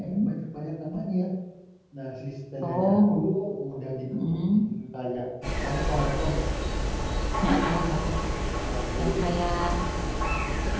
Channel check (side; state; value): both; identical; correlation 1.00